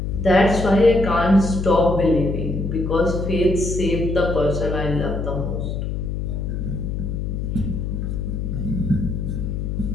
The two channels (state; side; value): noise; left; hum, 3 dB below the sound